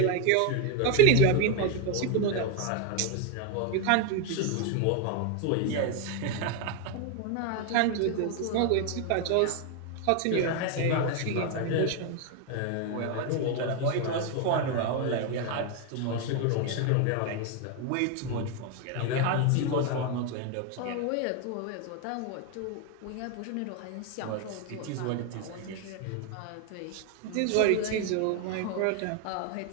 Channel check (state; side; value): different; both; correlation 0.01